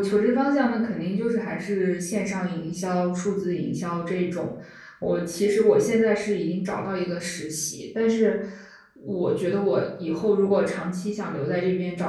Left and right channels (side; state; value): both; identical; correlation 1.00